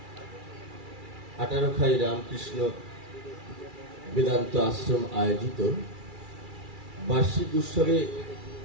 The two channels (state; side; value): late; left; 2.3 ms